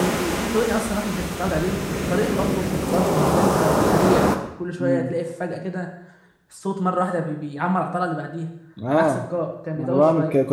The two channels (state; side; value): identical; both; correlation 1.00